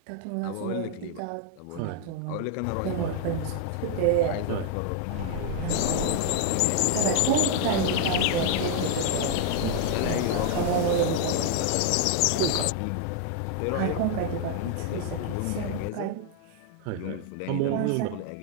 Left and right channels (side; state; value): both; different; correlation 0.00